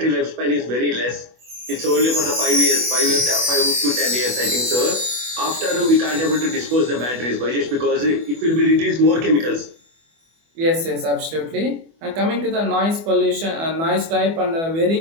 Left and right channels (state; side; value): late; left; 24 ms